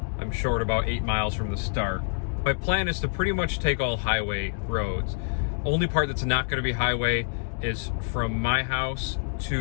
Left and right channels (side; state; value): right; silent; digital silence